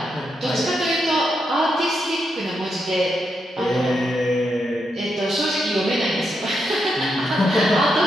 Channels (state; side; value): normal; both; correlation 0.83